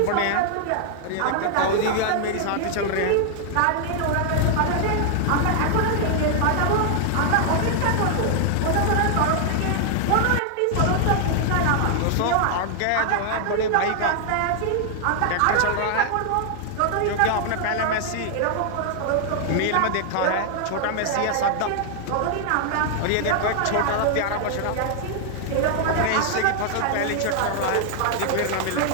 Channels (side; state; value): both; different; correlation 0.00